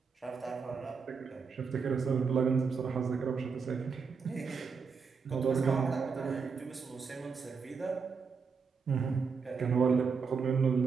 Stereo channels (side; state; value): left; quieter; 5.5 dB